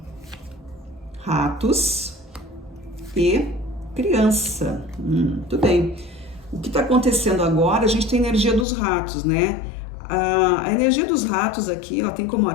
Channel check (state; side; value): drops out; right; at 8.7 s